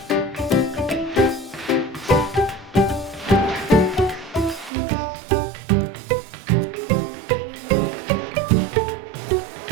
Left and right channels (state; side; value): drops out; left; at 4.7 s